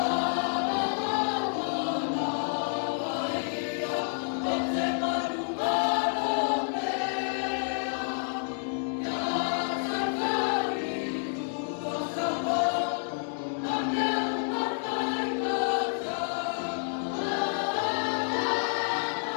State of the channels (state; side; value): silent; right; digital silence